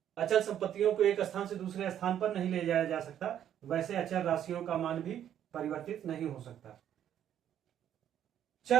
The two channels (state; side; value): quieter; left; 10.3 dB